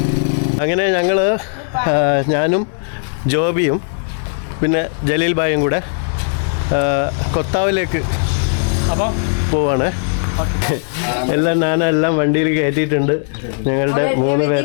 അങ്ങനെ ഞാനും ജോബിയും പിന്നെ ജലീൽ ഭായും കൂടെ കൊത്താവിലേക്ക് പോവാണ്. എല്ലാം വണ്ടിയിൽ കയറ്റിയിട്ടുണ്ട്. ഞങ്ങളുടെ 3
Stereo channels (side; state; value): right; silent; digital silence